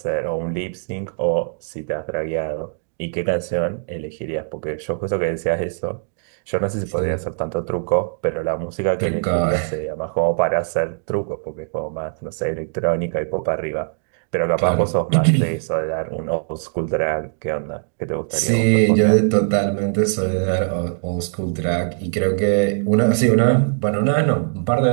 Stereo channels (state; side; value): silent; left; digital silence